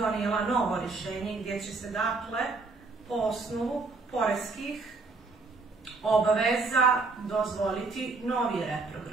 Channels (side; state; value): left; quieter; 3.9 dB